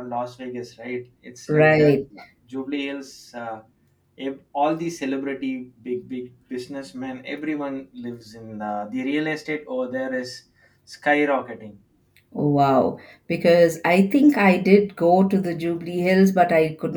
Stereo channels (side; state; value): both; identical; correlation 1.00